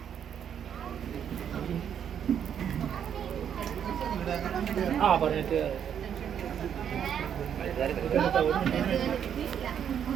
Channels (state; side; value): quieter; left; 8.7 dB